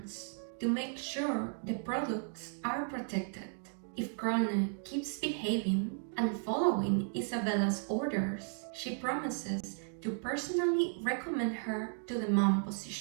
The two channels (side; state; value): left; silent; 55 dB below the other